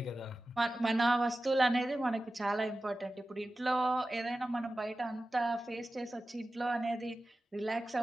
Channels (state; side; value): normal; both; correlation 0.95